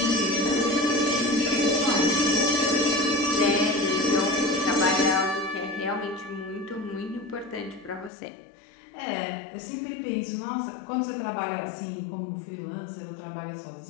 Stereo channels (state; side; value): drops out; right; at 8.1 s